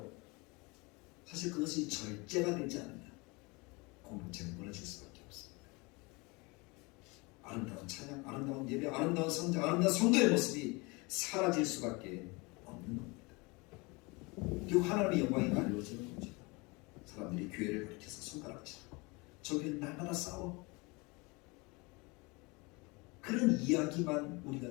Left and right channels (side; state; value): right; quieter; 26.6 dB